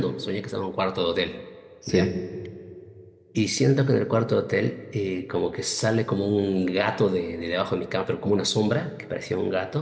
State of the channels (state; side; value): identical; both; correlation 1.00